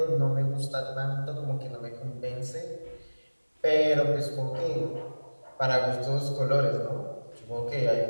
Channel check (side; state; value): both; inverted; correlation -1.00